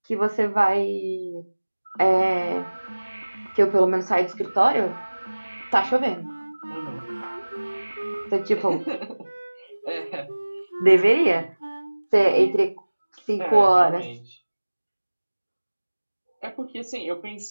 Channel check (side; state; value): both; inverted; correlation -1.00